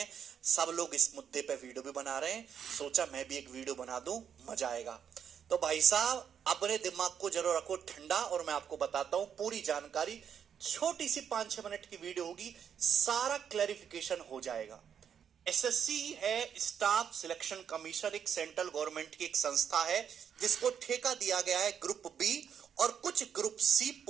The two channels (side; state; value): left; quieter; 8.0 dB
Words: सब लोग इस मुद्दे पे वीडियो भी बना रहे हैं। सोचा मैं भी एक वीडियो बना दूं, मजा आएगा। तो भाई साहब, अपने दिमाग को जरूर रखो ठंडा और मैं आपको बताता हूं पूरी जानकारी। छोटी सी 5-6 मिनट की वीडियो होगी, सारा क्लैरिफिकेशन हो जाएगा। एसएससी है स्टाफ सिलेक्शन कमीशन, एक सेंट्रल गवर्नमेंट की एक संस्था है जिसको ठेका दिया गया है ग्रुप बी और कुछ ग्रुप सी